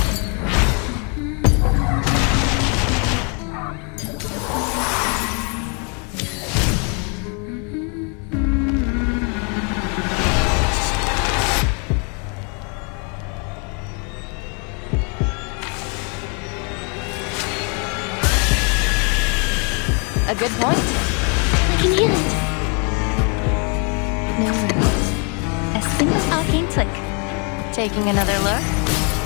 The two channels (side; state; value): right; quieter; 36.3 dB